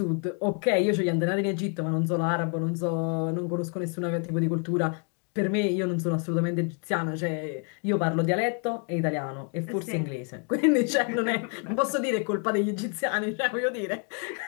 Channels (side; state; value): right; quieter; 39.6 dB